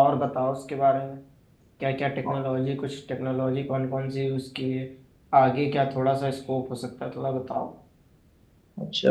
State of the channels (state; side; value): identical; both; correlation 1.00